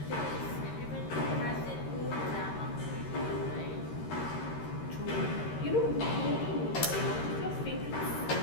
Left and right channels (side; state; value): right; late; 13 ms